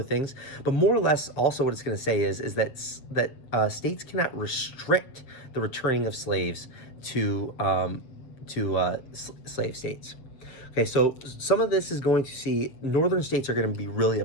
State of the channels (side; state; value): right; late; 7.4 ms